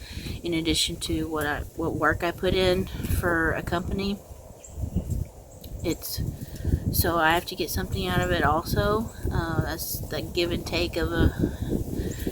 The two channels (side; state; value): both; identical; correlation 1.00